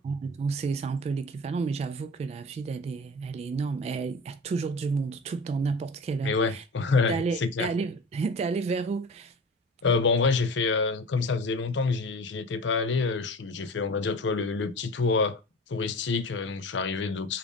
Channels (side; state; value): both; normal; correlation 0.36